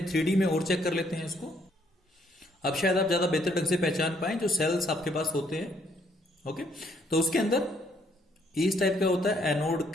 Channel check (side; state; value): both; normal; correlation 0.68